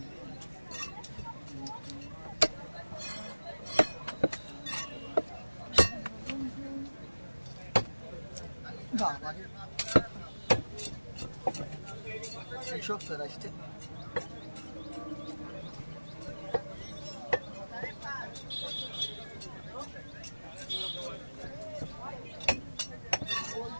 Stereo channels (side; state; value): both; inverted; correlation -1.00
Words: çok güzel işte.